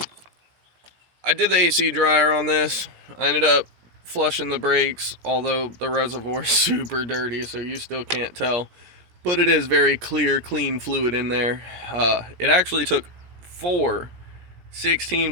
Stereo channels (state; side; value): late; left; 17 ms